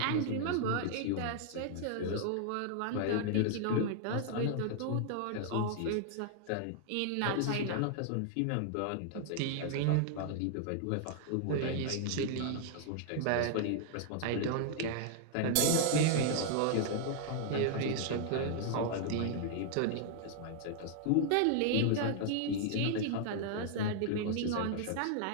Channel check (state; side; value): different; both; correlation -0.01